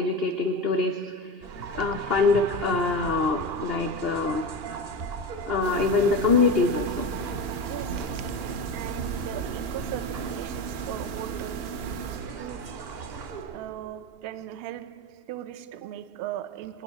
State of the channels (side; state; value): left; late; 2.8 ms